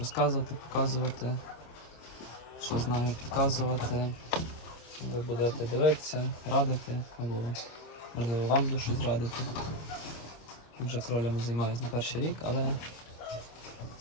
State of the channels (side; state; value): right; late; 26 ms